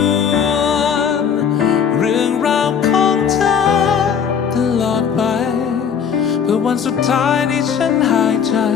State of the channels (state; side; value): quieter; right; 7.5 dB